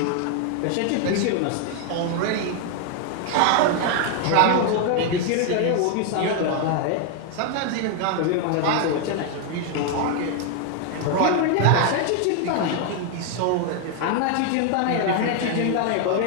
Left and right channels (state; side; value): different; both; correlation 0.01